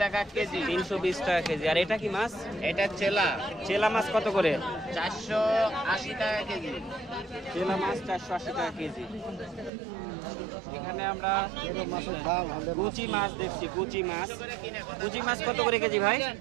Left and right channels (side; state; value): left; drops out; at 9.7 s